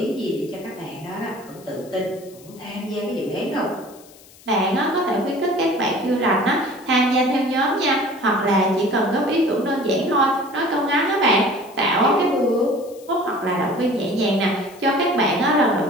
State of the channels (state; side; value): noise; left; hiss, 24 dB below the sound